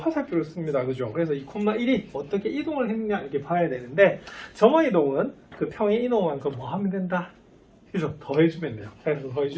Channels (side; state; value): both; identical; correlation 1.00